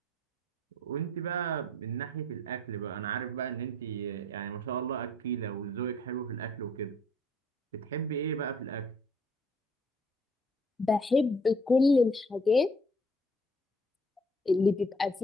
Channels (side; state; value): both; normal; correlation 0.60